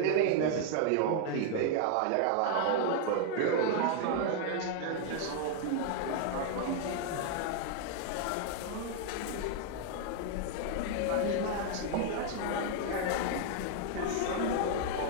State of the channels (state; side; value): different; both; correlation 0.00